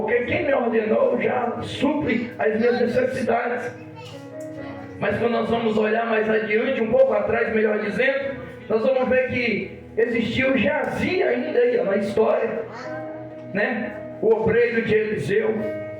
quem me ordenou já supre as minhas necessidades. Mas quando nós vamos olhar mais adiante, um pouco atrás, melhor dizendo, nós vamos ver que existiu o Geazi ainda aí na história, né? O obreiro de Eliseu,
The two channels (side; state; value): both; identical; correlation 1.00